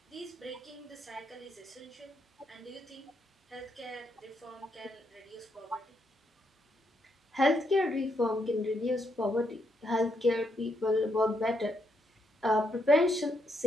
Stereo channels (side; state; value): both; normal; correlation 0.77